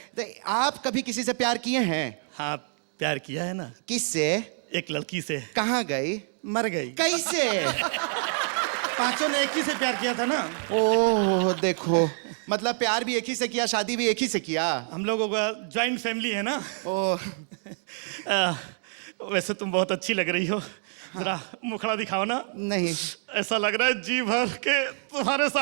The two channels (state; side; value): silent; left; 60 dB below the other